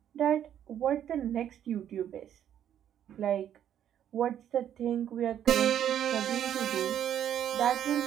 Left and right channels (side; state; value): left; quieter; 10.1 dB